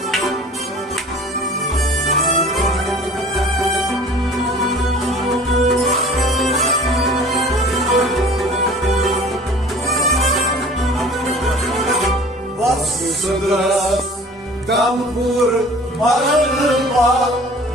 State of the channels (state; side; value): normal; both; correlation 0.46